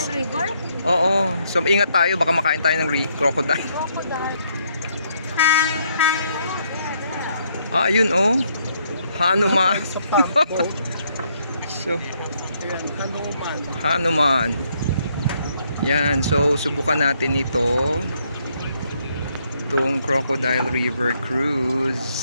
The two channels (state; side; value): inverted; both; correlation -0.72